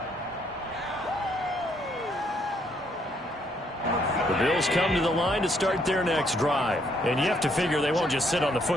The Bills come to the line to start their next drive. And you have to figure they won't just sit on the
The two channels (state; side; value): normal; both; correlation 0.70